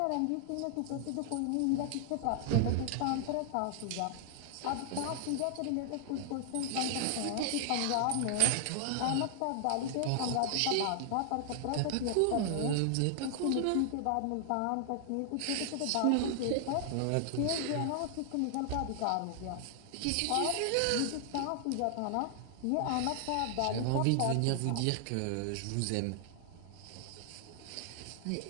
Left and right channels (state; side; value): different; both; correlation 0.00